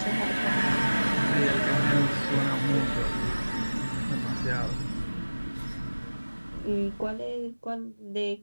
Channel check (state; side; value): inverted; both; correlation -1.00